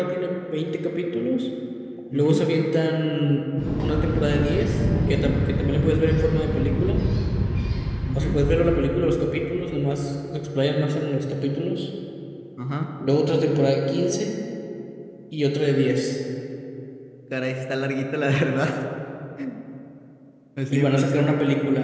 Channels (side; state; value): both; identical; correlation 1.00